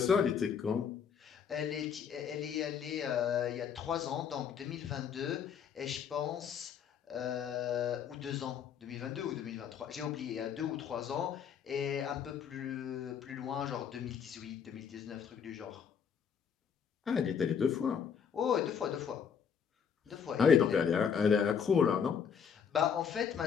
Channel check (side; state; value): right; quieter; 7.3 dB